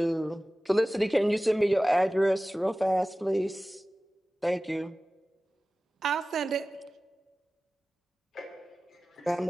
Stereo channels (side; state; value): both; normal; correlation 0.97